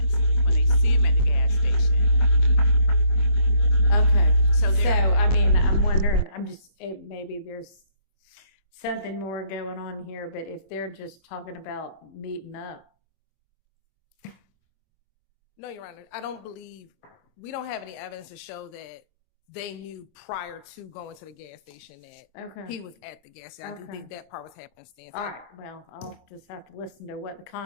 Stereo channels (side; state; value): right; late; 25 ms